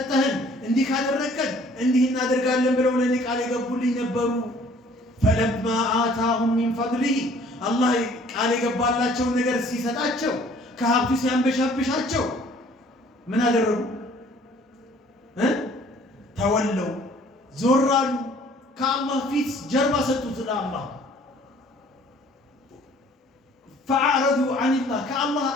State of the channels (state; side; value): normal; both; correlation 0.56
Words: እንዲህ ካደረከን እንዲህ እናደርጋለን ብለው ለእኔ ቃል የገቡልኝ ነበሩ። ፈለማ አታሁም ሚን ፈድሊሂ አላህ ቃል የገባላቸውን ነገር ሲሰጣቸው ከሀብቱ ሲያንበሻብሻቸው ምን አደረጉ? ተወለው፣ ዞር አሉ። ከአላህ ፊት ጀርባ ሰጡት ለአላህ። ፈአዕረዱ ዐኒላህ ከአላህ